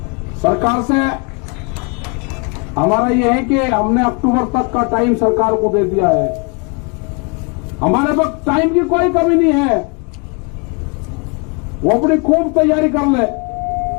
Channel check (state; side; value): quieter; right; 33.6 dB